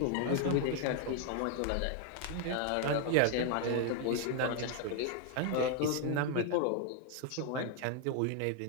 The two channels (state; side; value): different; both; correlation 0.00